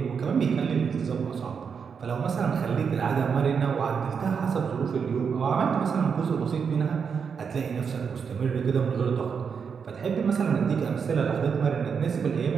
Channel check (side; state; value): left; quieter; 6.3 dB